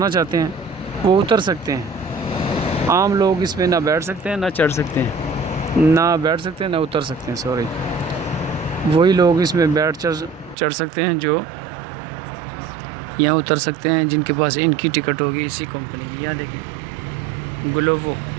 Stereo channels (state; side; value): drops out; left; at 10.6 s